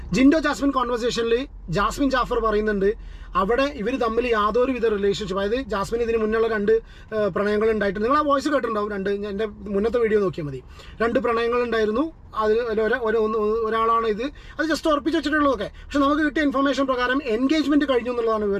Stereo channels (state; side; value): identical; both; correlation 1.00